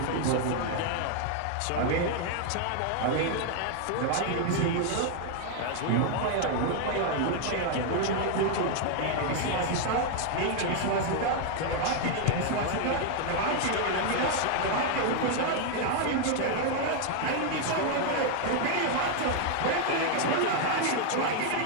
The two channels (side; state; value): both; different; correlation 0.00